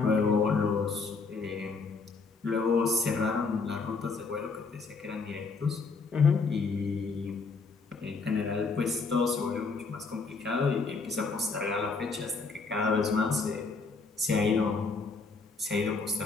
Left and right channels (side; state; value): right; quieter; 4.4 dB